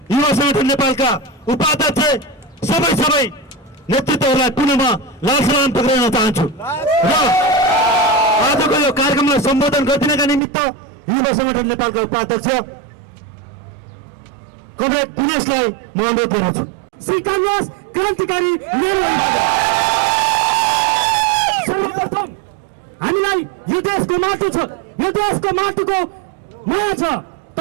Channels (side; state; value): left; drops out; at 10.4 s